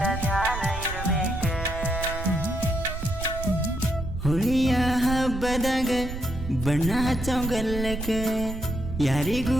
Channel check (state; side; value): noise; right; rumble, 7 dB below the sound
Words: ಹೋಳಿಯ ಹಬ್ಬದಾಗ ಬಣ್ಣ ಹಚ್ಚೋಗಲ್ಲಕ ಯಾರಿಗೂ